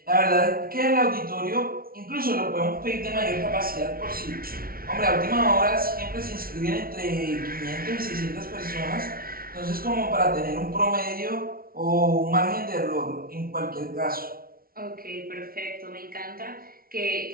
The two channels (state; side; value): late; left; 0.43 ms